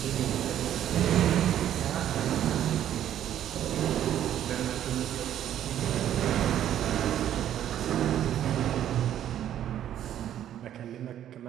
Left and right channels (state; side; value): quieter; left; 11.0 dB